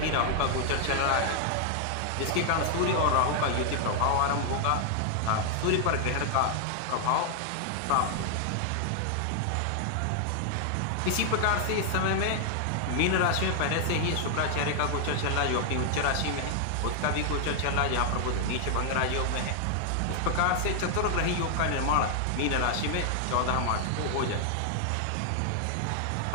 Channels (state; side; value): different; both; correlation 0.00